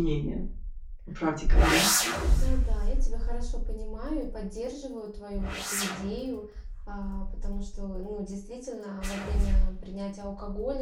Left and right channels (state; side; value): identical; both; correlation 1.00